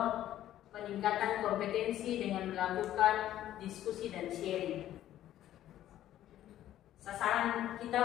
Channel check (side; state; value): right; quieter; 12.6 dB